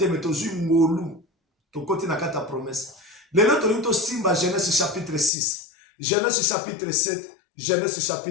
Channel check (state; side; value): drops out; right; at 5.3 s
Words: mais tozui ngolu. To koti na kata promesse. Lelo to linto simba Genèse chapitre 6. Genèse chapitre 7. Genèse